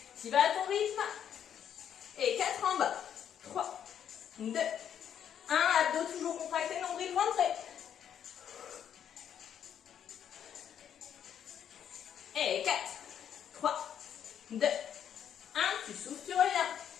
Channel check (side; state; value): right; quieter; 9.1 dB